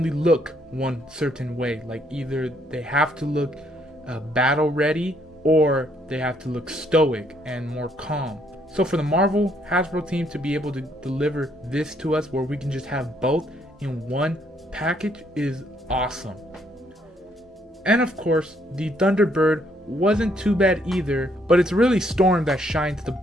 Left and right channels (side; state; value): both; normal; correlation 0.70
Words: look one certain way. Like either they have to look battle ready, or they have to look stoic and more calm. So for the Marvel Hasbro team to be able to deliver this to us where we can just have both in one package is awesome. And of course, the Thunderbird wasn't too bad either, but it's really Storm that shines the